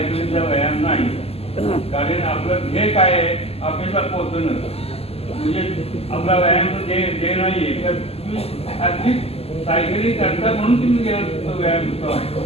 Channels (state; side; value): late; right; 0.29 ms